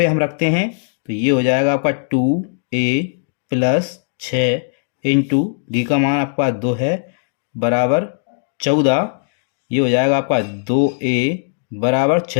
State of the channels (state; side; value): silent; right; digital silence